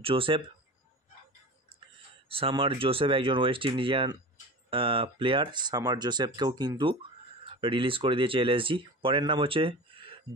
জোসেফ। সামার জোসেফ একজন ওয়েস্ট ইন্ডিয়ান প্লেয়ার। সামার জোসেফকেও কিন্তু রিলিজ করে দিয়েছে এলএসজি। পরের নাম হচ্ছে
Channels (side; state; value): both; normal; correlation 0.32